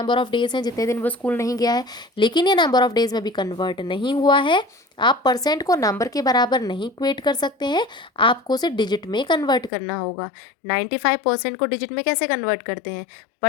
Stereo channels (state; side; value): drops out; right; at 9.7 s